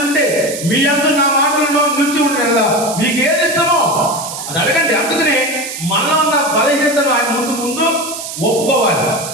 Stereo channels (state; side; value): noise; right; hiss, 8 dB below the sound